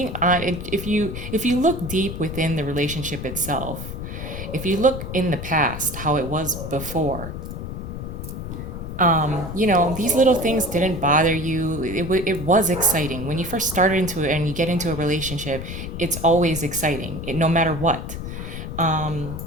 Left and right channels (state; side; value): noise; left; rumble, 7 dB below the sound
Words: on, if you look deep within the relationship itself, if you look in the past, how it was before, these little things didn't bother you. It was exciting when you first started into it, and you get into a relationship. It's always exciting, no matter what.